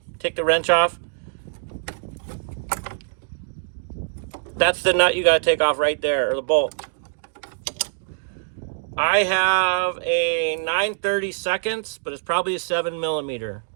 take the wrench off. That's the nut you got to take off right there, or the bolt. I have a 9/32, but it's probably a 7mm.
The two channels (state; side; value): silent; left; digital silence